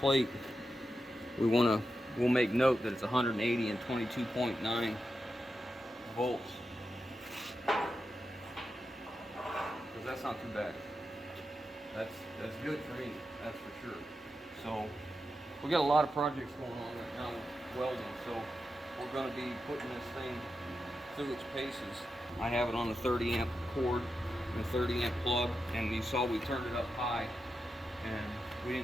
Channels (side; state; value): both; normal; correlation 0.89